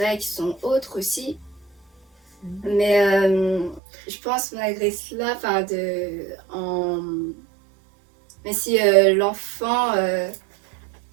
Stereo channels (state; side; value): drops out; left; at 3.8 s